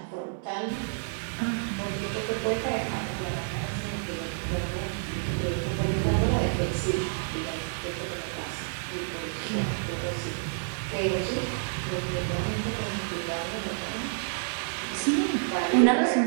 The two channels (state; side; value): silent; left; 58 dB below the other